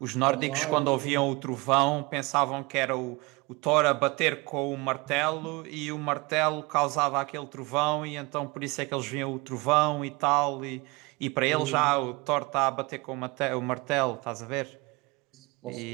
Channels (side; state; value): left; quieter; 25.3 dB